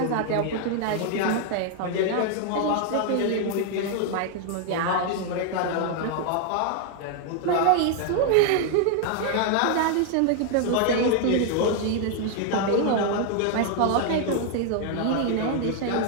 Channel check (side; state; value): both; different; correlation 0.00